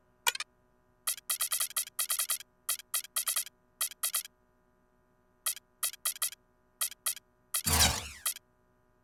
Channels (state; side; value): identical; both; correlation 1.00